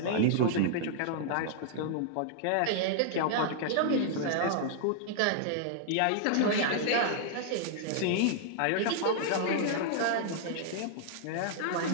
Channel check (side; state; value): both; different; correlation -0.01